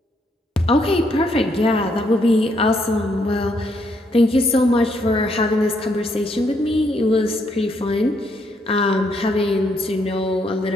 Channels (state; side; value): normal; both; correlation 0.74